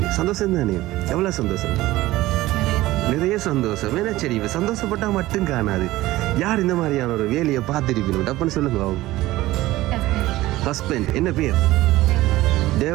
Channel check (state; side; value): quieter; left; 17.2 dB